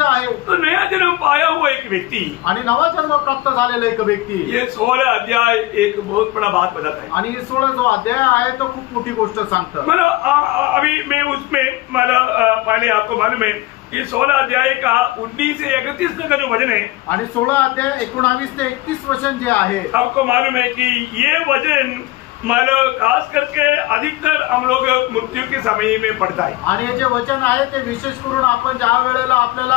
आहे. तो नया जन्म पाया हुआ एक व्यक्ति, आणि नवा जन्म प्राप्त झालेला एक व्यक्ती, ये 16 अध्याय एक बहुत बड़ा बात बताता है. आणि 16 जो अध्याय आहे तो खूप मोठी गोष्ट सांगतं. मतलब अभी मैं उसमें पहले आपको मालूम है कि 16 अध्याय का 19 से 31 तक का जो वचन है, आणि 16 अध्याय 19 ते 31 वचन जे आहे, आपको मालूम है कि ये वचन मतलब खास करके अधिकतर हम लोग मृत्यु के समय में पढ़ता है. आणि हे जे वचन आहे ते विशेष करून आपण ज्या वेळेला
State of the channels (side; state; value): right; quieter; 18.4 dB